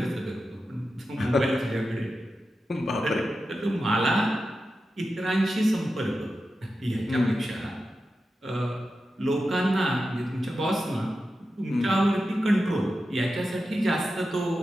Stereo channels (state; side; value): normal; both; correlation 0.91